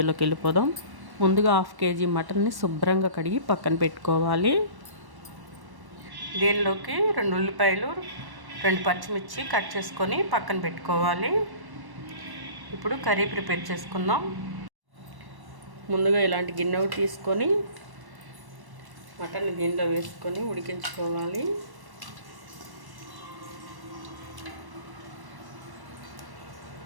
వెళ్ళిపోదాం. ముందుగా 1/2 kg మటన్ని శుభ్రంగా కడిగి పక్కన పెట్టుకోవాలి. దీనిలోకి 2 ఉల్లిపాయలు, 2 పచ్చిమిర్చి కట్ చేసుకొని పక్కన పెట్టుకోవాలి. ఇప్పుడు కర్రీ ప్రిపేర్ చేసుకుందాం. ముందుగా ఇలాంటి గిన్నె తీసుకొని మటన్ దీనిలో వేసుకొని ఉడికించుకోవాలి.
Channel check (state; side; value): late; left; 1.1 ms